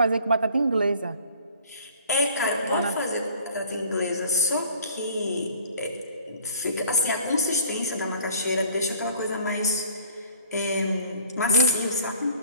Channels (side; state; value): both; inverted; correlation -0.52